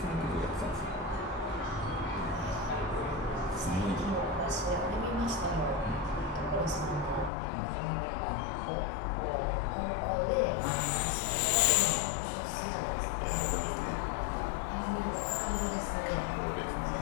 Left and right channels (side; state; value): right; drops out; at 7.3 s